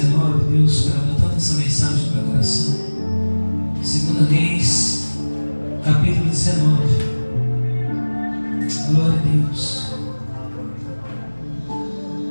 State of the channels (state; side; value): inverted; both; correlation -1.00